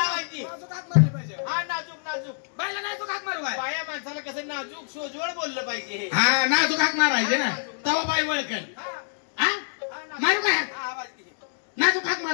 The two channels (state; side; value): silent; right; digital silence